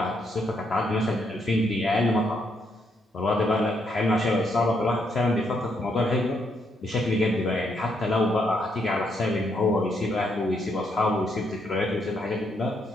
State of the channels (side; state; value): both; normal; correlation 0.76